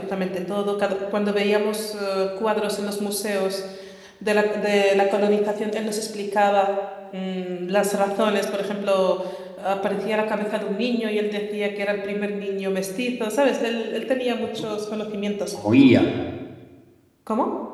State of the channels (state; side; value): identical; both; correlation 1.00